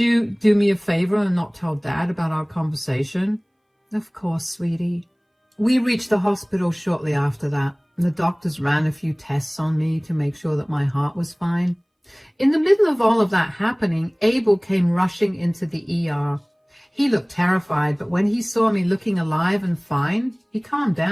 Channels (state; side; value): identical; both; correlation 1.00